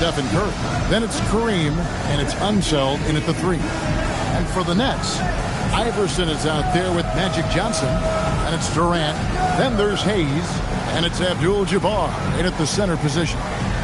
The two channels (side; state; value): both; identical; correlation 1.00